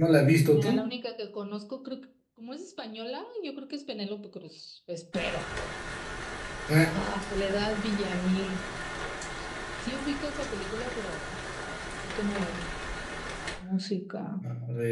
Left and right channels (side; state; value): both; identical; correlation 1.00